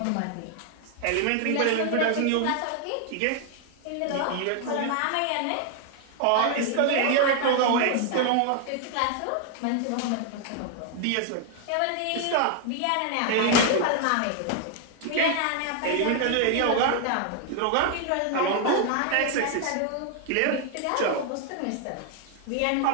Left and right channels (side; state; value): both; different; correlation 0.00